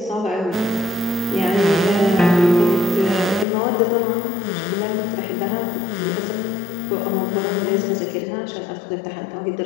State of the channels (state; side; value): drops out; right; at 3.5 s